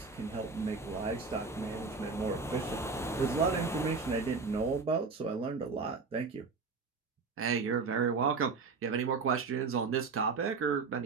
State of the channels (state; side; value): quieter; left; 4.6 dB